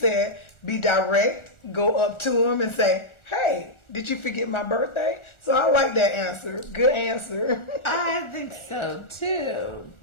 "Be direct. Go up to him and say, hey, did you forget my birthday?" So I like that answer. Good answer. I think so too.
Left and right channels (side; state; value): right; late; 1.4 ms